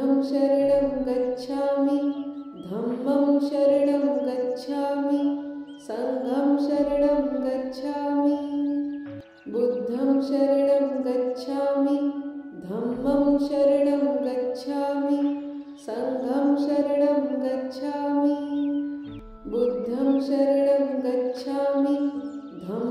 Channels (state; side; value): identical; both; correlation 1.00